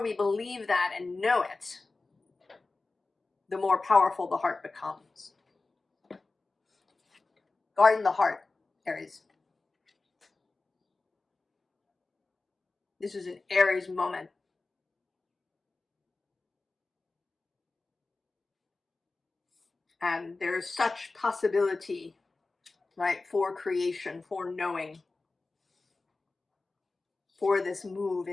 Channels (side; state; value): right; quieter; 3.6 dB